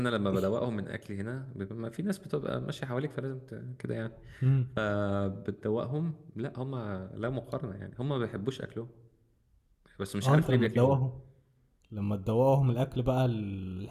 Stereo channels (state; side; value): identical; both; correlation 1.00